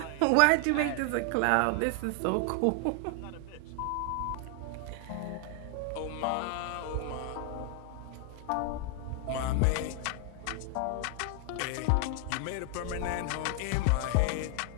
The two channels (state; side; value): different; both; correlation 0.00